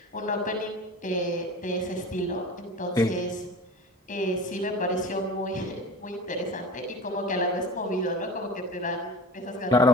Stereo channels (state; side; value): normal; both; correlation 0.34